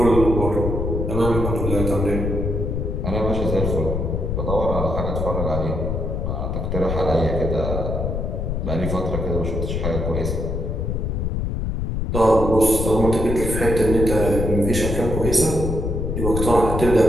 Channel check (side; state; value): left; noise; rumble, 1 dB below the sound